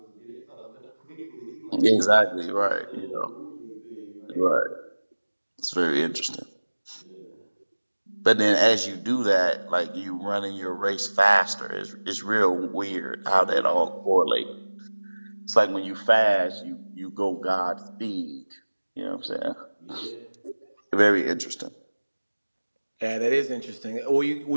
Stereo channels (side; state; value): both; inverted; correlation -1.00